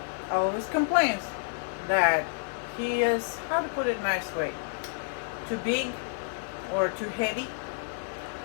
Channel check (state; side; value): silent; right; 58 dB below the other